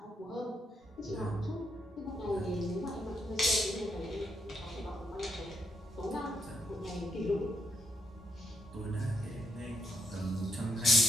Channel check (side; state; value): both; normal; correlation 0.78